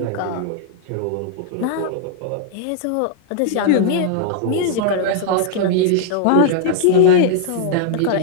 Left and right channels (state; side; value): different; both; correlation -0.01